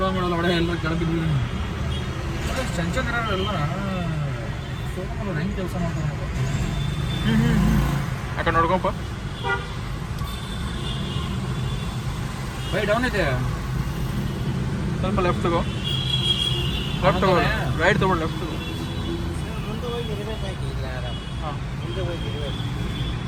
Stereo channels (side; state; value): both; identical; correlation 1.00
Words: ಮಾಡಲ್ಲ ಒಡೆ ಎಲ್ಲ ಕೆಳಬಿದ್ವಿ. ಚಂಚನ್ ಇರೋರೆಲ್ಲ ಶೋರೂಮಲ್ಲಿ ಹೆಂಗೆ ಕೆಲಸ ಮಾಡ್ತಾರೆ ಯಾಕೆ ನೋಡ್ಕೊಪ್ಪ. ಬೈ ಡೌನ್ ಇದೆ ಸ್ವಲ್ಪ ಲೆಫ್ಟ್ ತಗೋ. ಲೆಫ್ಟ್ ತಗೋ, ರೈಟ್ ತಗೊಂಡು ಲೆಫ್ಟ್ ತಗೋ. ಹಾಂ ಮುಂದೆ